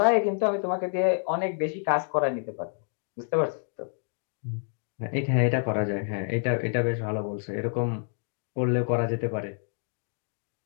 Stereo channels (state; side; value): silent; right; 55 dB below the other